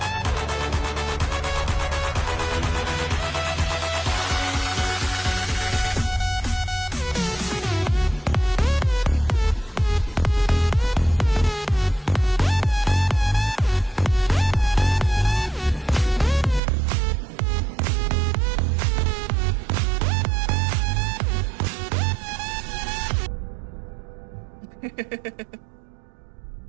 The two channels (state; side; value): drops out; left; at 16.6 s